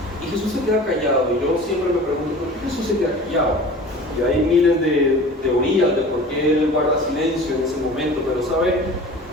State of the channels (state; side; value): normal; both; correlation 0.41